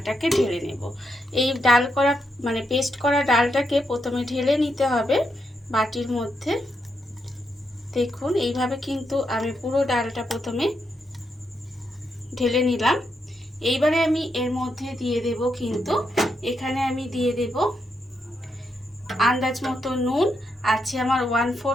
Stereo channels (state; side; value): normal; both; correlation 0.82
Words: ঢেলে নেব। এই ডাল করা পেস্ট করা ডালটাকে প্রথমে ঢেলে নিতে হবে বাটির মধ্যে। দেখুন এইভাবে কিন্তু আমি পুরো ডালটা প্রথমে ঢেলে নিলাম। এইবারে আমি এর মধ্যে দিয়ে দেব কিন্তু এখানে আমি দিয়ে দেব আন্দাজ মতো নুন, আছে আমার